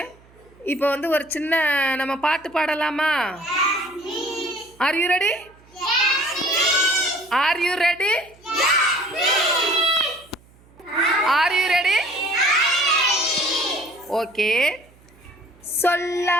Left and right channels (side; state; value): right; noise; hum, 28 dB below the sound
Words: இப்போ வந்து ஒரு சின்ன நம்ம பாட்டு பாடலாமா? Are you ready? Are you ready? Are you ready? Okay.